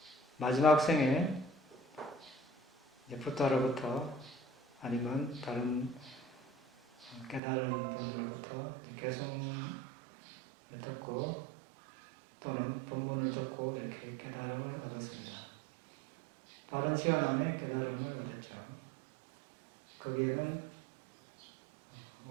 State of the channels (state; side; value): drops out; left; at 7.4 s